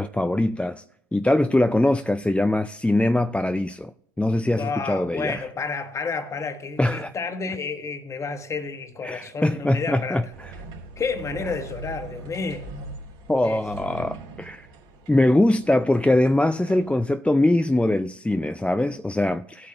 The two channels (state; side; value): normal; both; correlation 0.91